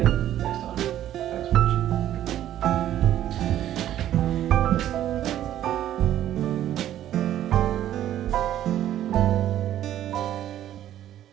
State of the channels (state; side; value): quieter; left; 12.0 dB